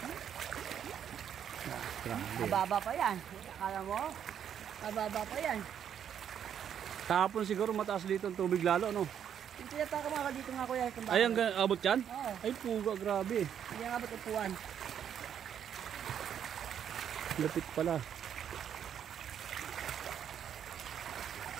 Mababa pa yan. Akala mo? Mababa pa yan. Kahapon siguro mataas dito ang tubig lalo, no? Yung tinataka mga dito nga kuya. Ay, ang abot yan? Oo. Ay, puga, grabe. Hindi nga abot upuan. Lapit pala.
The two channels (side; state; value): left; quieter; 8.9 dB